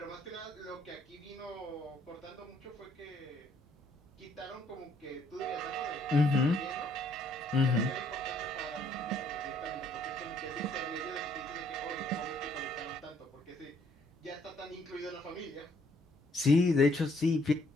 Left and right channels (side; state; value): both; normal; correlation 0.66